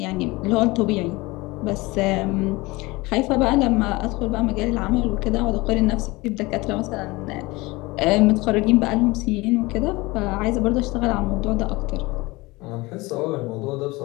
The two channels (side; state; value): right; quieter; 22.5 dB